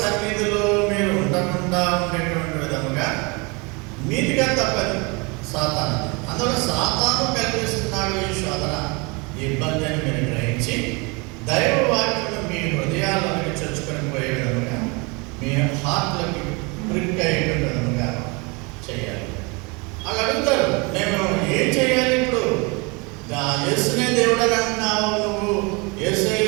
మీరు ఉండకుండా ఉండేటువంటి విధముగా మీదిగా తప్పదు సాతాను. అందులో సాతాను కల్పిస్తున్నాడు ఈ శోధన, ఈ ఇబ్బంది అని మీరు గ్రహించి దైవ వాక్యం మీ హృదయాల్లోకి చొచ్చుకొని పోయే విధముగా, మీ హార్ట్లకి ప్రిక్ అయ్యేటువంటి విధముగా చేయాలి. అలా అడుగుతారు, నేను ఏం చేయాలి ఇప్పుడు? యేసునే దేవుడు అని అంటున్నావు, నువ్వు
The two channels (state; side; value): quieter; left; 28.9 dB